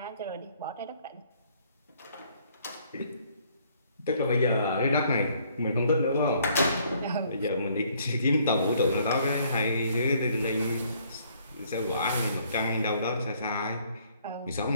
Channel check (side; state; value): both; inverted; correlation -0.64